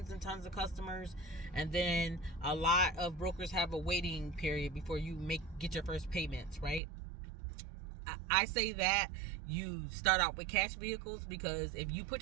and tons of customers, and then a lot of brokers have a waiting period before you get your first payments, right? I say that you start out with cash vehicles, because if you put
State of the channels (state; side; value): drops out; left; at 6.8 s